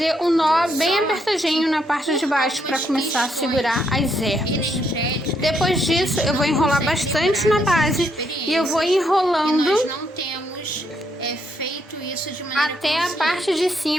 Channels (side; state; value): both; normal; correlation 0.75